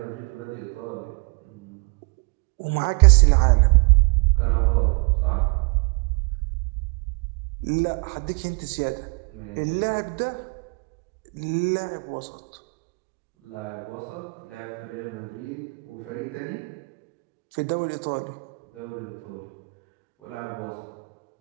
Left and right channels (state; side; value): quieter; left; 34.1 dB